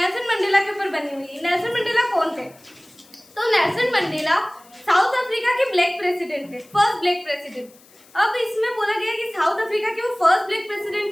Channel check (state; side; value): noise; left; hiss, 27 dB below the sound